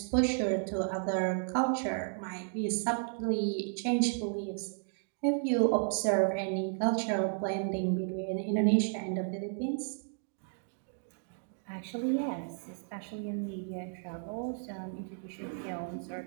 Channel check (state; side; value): silent; left; 56 dB below the other